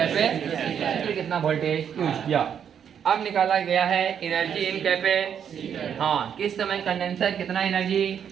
कितना वोल्टेज यूज किया। अब निकाला गया है एनर्जी इन कैपेसिटर। हाँ, किस समय कंडेंसर कितना एनर्जी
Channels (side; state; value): left; quieter; 8.3 dB